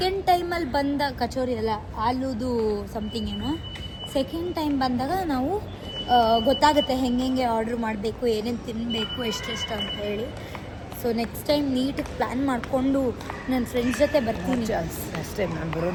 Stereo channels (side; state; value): both; identical; correlation 1.00